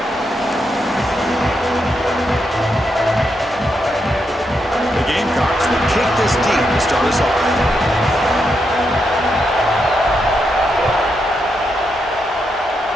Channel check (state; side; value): normal; both; correlation 0.82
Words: The Gamecocks will kick this deep to start us off.